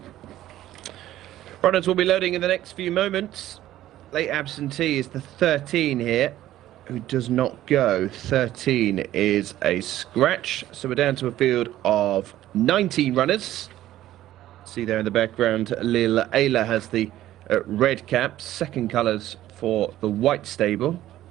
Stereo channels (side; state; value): left; quieter; 13.8 dB